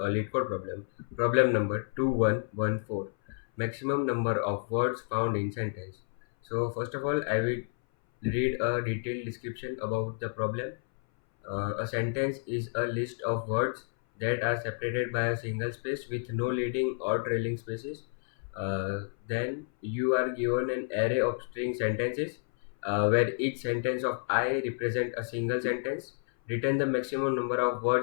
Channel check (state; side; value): silent; right; 58 dB below the other